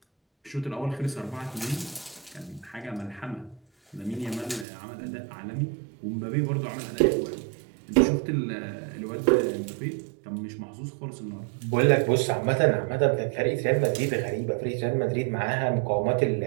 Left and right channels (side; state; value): left; drops out; at 4.7 s